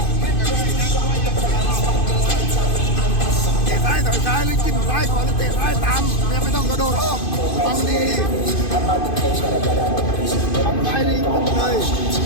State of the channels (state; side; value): late; right; 2.5 ms